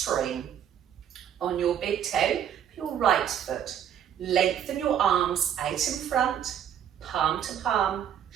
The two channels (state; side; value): quieter; left; 9.4 dB